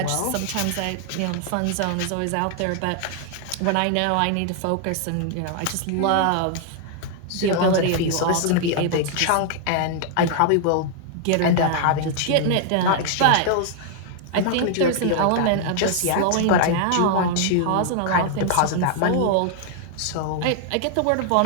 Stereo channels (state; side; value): different; both; correlation 0.00